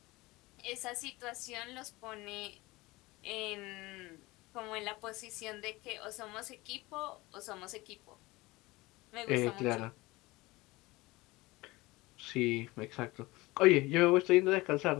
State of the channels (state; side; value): quieter; right; 21.3 dB